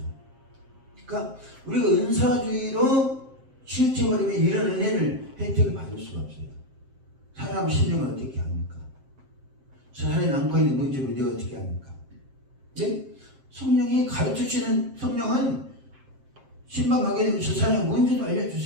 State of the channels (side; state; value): left; late; 7.6 ms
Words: 그러니까 우리가 은사주의로 치우쳐버리면 이런 은혜를 혜택을 받을 수가 없어요. 사람 심령을 어떻게 합니까? 사람이 안고 있는 문제를 내가 어떻게 합니까? 네? 성령이 가르쳐 주시는 성령은 신방하게 되면 저 사람의 문제도